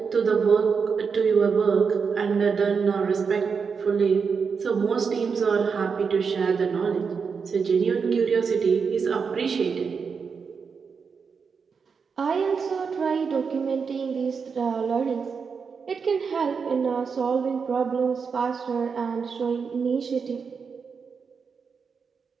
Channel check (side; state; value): left; quieter; 5.7 dB